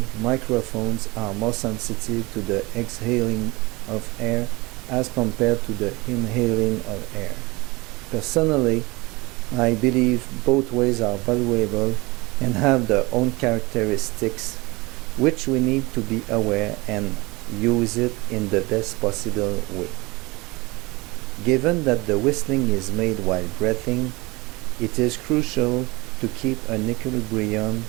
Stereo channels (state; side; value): quieter; left; 23.8 dB